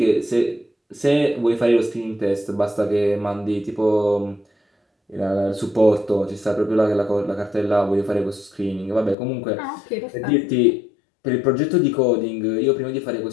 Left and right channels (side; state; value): right; drops out; at 9.2 s